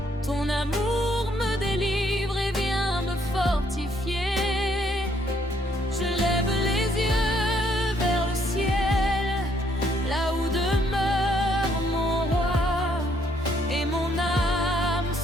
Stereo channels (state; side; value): normal; both; correlation 0.69